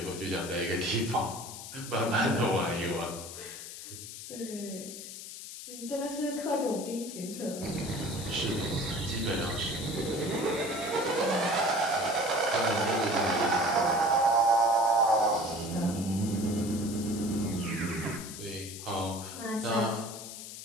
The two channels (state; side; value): noise; left; hiss, 11 dB below the sound